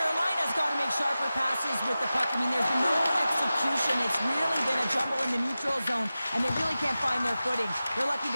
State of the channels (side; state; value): both; inverted; correlation -0.95